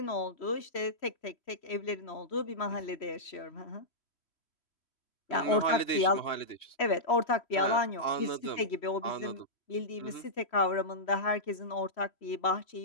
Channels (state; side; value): late; right; 3.1 ms